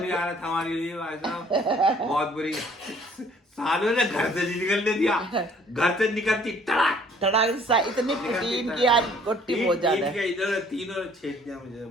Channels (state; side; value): normal; both; correlation 0.58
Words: हमारे लिए भाई साहब बहुत बुरी। सालों ने घर से निकलने दिया, घर से निकलती तड़ाक तड़ाक इतनी प्रोटीन की आज गोटी बहुत ज्यादा है। इधर तीनों छेद दिया मुझे,